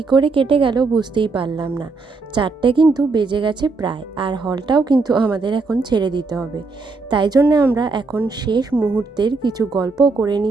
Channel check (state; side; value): quieter; left; 4.0 dB